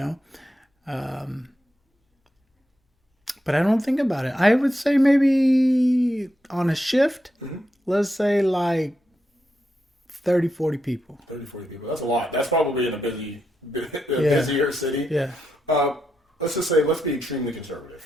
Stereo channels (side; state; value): both; normal; correlation 0.84